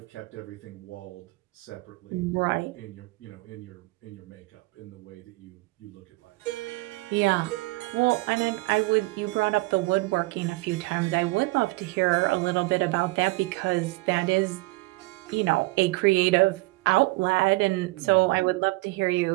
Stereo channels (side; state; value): left; quieter; 22.9 dB